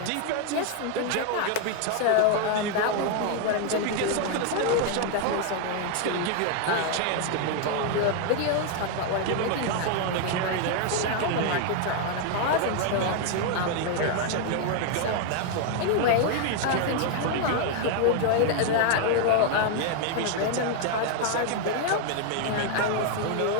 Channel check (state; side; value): different; both; correlation 0.00